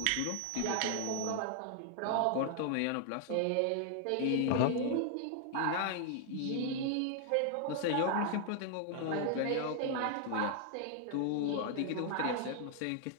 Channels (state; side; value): different; both; correlation 0.00